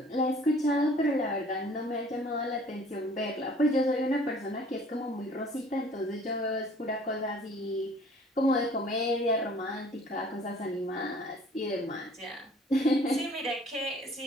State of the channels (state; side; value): normal; both; correlation 0.53